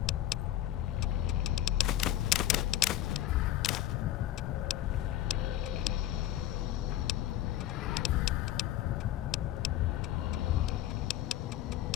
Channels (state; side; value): quieter; right; 13.2 dB